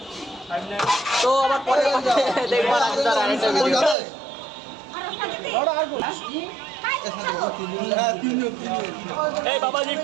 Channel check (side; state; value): left; drops out; at 4.0 s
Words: তো আবার পরে দেখবো রাজুদার আরেকটা ভিডিও। এই বাবাজি